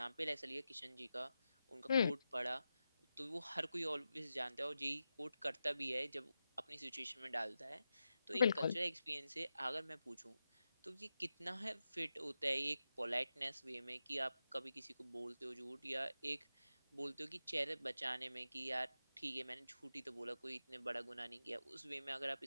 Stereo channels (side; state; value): both; inverted; correlation -0.90